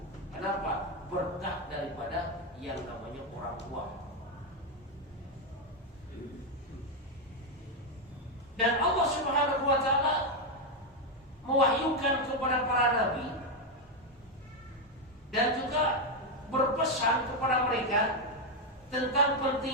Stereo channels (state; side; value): normal; both; correlation 0.05